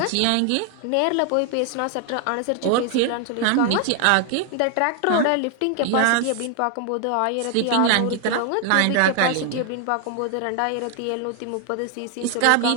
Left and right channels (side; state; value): both; different; correlation 0.00